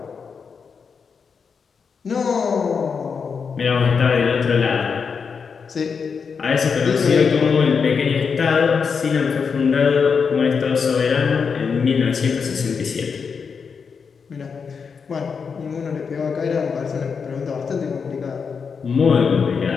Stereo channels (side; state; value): right; quieter; 5.8 dB